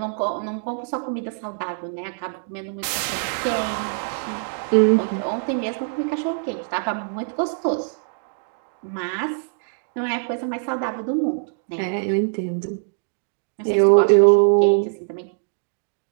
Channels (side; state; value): left; silent; digital silence